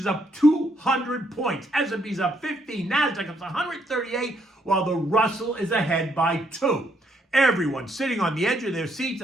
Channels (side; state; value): both; normal; correlation 0.73